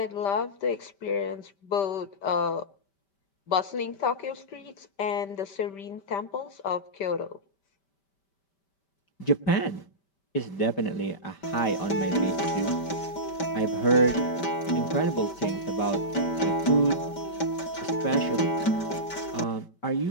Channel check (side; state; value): right; late; 5.1 ms